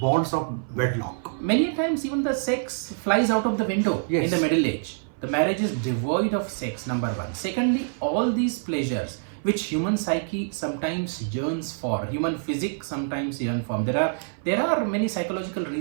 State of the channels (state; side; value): silent; left; 57 dB below the other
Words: bonds of wedlock. Many times even the sex flies out of the window in the middle age. The marriage is devoid of sex, number one. Secondly, all these pleasures which human psyche sometimes yearns for, human physics sometimes yearn for. There are many psychological